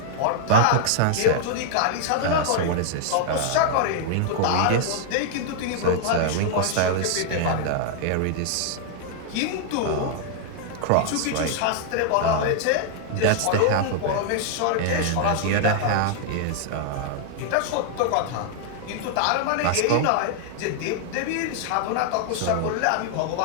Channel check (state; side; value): different; both; correlation -0.01